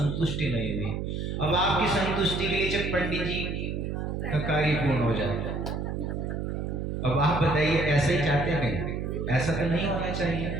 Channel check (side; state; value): right; noise; hum, 3 dB below the sound